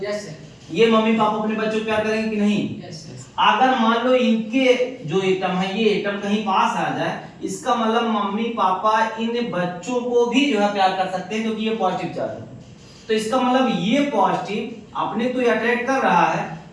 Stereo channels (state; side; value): identical; both; correlation 1.00